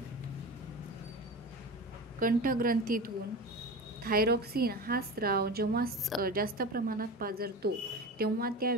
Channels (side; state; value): both; normal; correlation 0.29